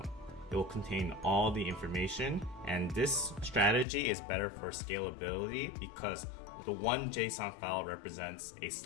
It will contain all the information, and this strategy is better for scalability because the one JSON file represents a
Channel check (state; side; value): drops out; right; at 3.9 s